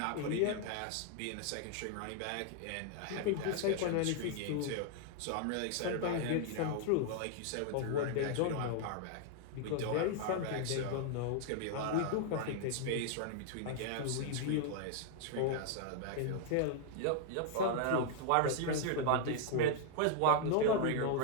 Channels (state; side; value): different; both; correlation 0.00